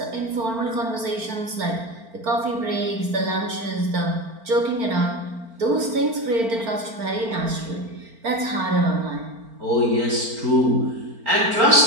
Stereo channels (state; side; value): late; left; 4.4 ms